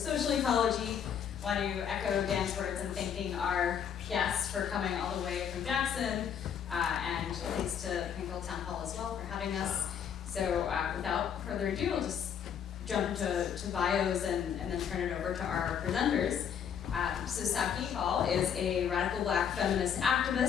Ecology. Want to echo Dan's words in thanking our guests for coming all the way from Jackson, and thanks to Plainfield Town Hall as well for having us. So without further ado, I'll just jump into bios and then turn it over to our presenters. So Saki Hall is a radical Black feminist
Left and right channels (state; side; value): quieter; right; 8.2 dB